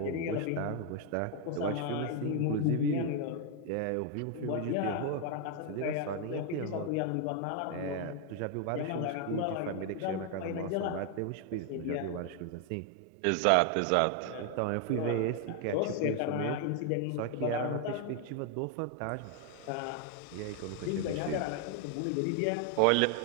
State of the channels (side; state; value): both; different; correlation 0.00